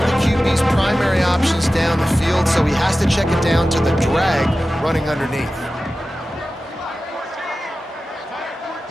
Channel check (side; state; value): both; normal; correlation 0.95